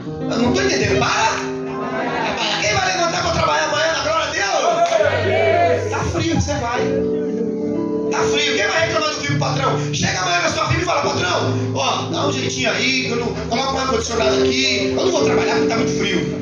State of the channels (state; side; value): identical; both; correlation 1.00